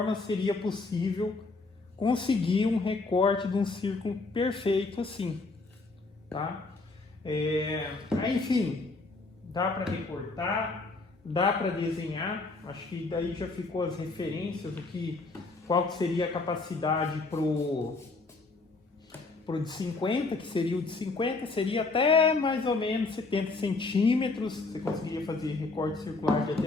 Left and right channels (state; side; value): quieter; right; 3.6 dB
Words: seria possível conseguir um recorte de um círculo perfeito assim, tá? Enfim, dá para recortar, dá para desenhar. Acho que daí já ficou as referências do que qual que seria a capacidade pro de 50, que seria o de 50, seria até mais ou menos 70 centímetros. Você conseguiria fazer recorte circular de